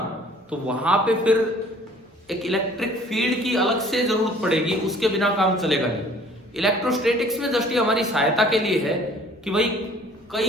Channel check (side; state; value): both; normal; correlation 0.54